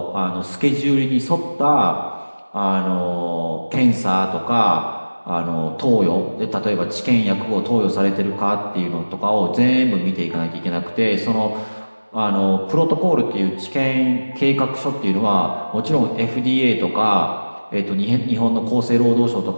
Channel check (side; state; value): both; inverted; correlation -1.00